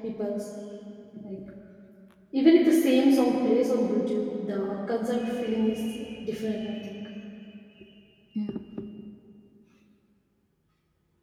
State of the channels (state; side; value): identical; both; correlation 1.00